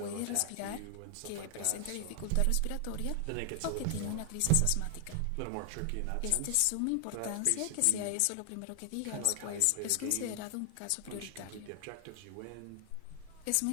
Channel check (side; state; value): both; different; correlation 0.00